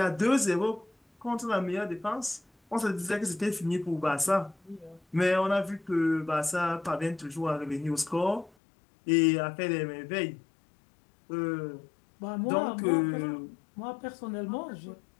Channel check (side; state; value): right; drops out; at 8.5 s